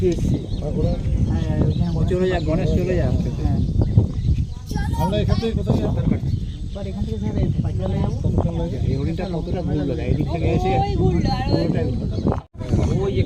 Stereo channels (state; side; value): identical; both; correlation 1.00